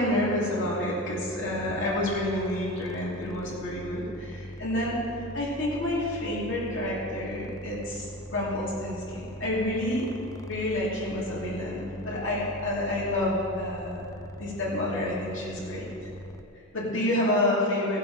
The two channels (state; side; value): normal; both; correlation 0.25